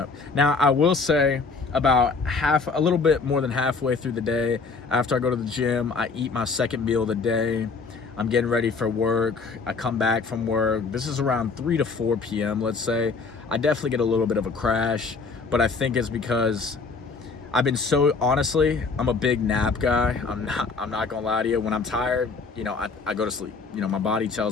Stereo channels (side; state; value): right; quieter; 4.4 dB